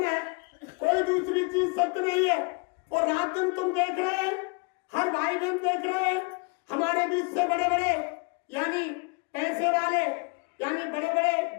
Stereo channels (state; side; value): quieter; right; 31.6 dB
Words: है, कोई दूसरी चीज सत्य नहीं है। और रात दिन तुम देख रहे हैं, हर भाई बहन देख रहे हैं, हमारे बीच से बड़े बड़े यानी पैसे वाले, यानी बड़े बड़े